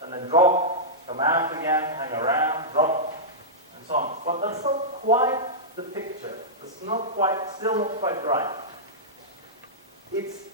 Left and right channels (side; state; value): both; normal; correlation -0.12